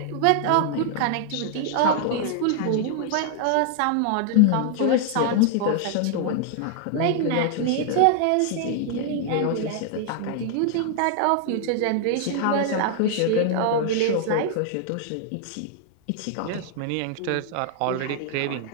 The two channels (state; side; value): different; both; correlation 0.00